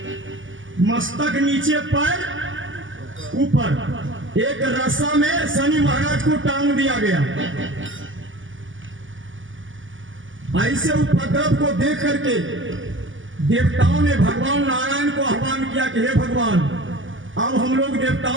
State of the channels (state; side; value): late; left; 0.57 ms